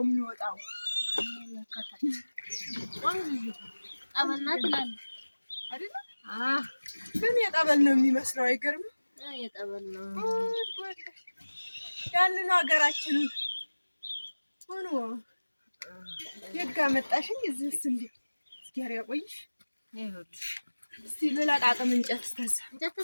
የሚወጣው ጠበልና ትላለህ አይደለ? ግን የጠበል ነው የሚመስለው። አይገርምም? የጠበል ነው ያንን ሀገራችንን ሆኖ የጋ መጣሽኝ እዚህስ እንዴ እስኪያር ያቆይሽ ይኸውልሽ እስቲ ልላቃቅም እንጨት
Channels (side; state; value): both; inverted; correlation -1.00